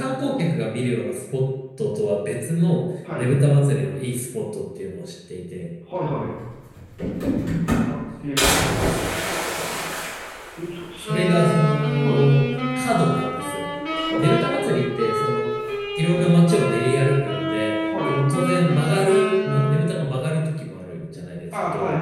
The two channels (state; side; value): identical; both; correlation 1.00